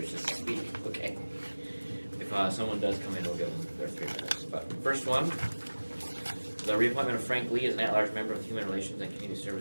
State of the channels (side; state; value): both; inverted; correlation -1.00